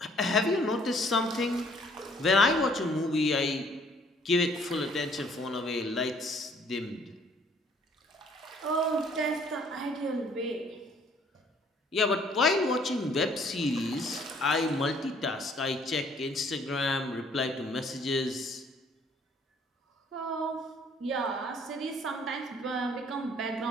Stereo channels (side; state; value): both; normal; correlation 0.61